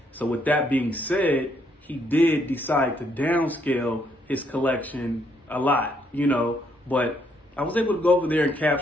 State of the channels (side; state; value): both; normal; correlation 0.72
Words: So with that being said, he did decide to downscale his collection a lot, but I was able to go over there and